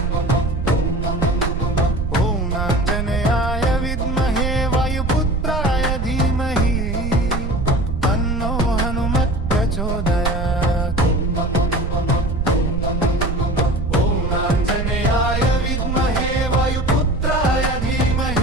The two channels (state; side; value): noise; right; rumble, 2 dB below the sound